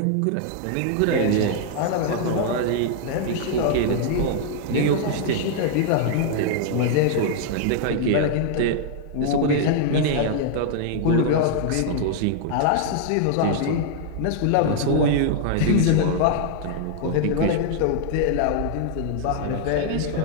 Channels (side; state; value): both; different; correlation -0.01